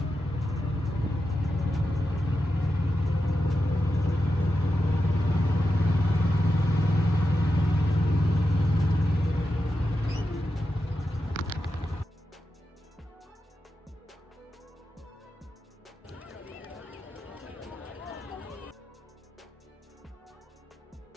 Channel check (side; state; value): both; normal; correlation 0.89